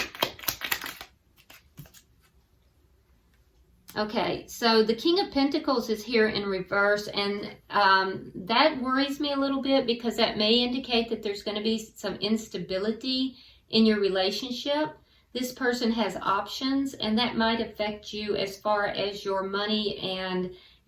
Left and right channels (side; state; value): both; identical; correlation 1.00